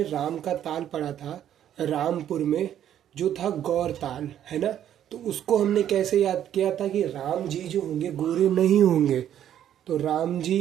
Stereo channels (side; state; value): left; quieter; 10.6 dB